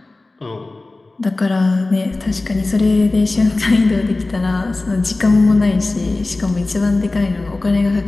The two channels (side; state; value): right; quieter; 3.1 dB